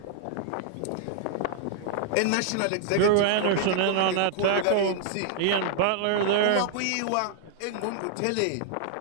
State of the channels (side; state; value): both; different; correlation -0.01